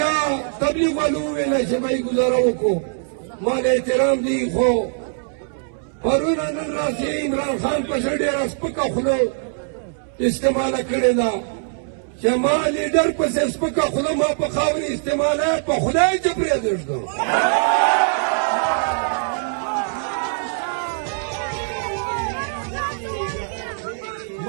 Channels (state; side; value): silent; left; 64 dB below the other